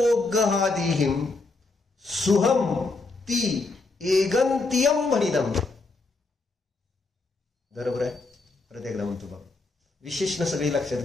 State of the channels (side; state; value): right; quieter; 3.6 dB